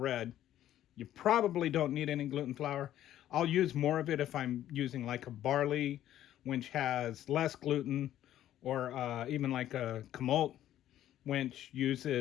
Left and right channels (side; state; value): right; quieter; 12.3 dB